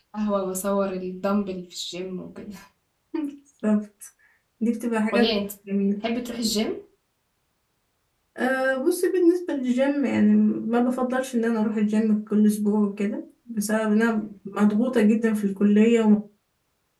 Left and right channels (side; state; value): both; identical; correlation 1.00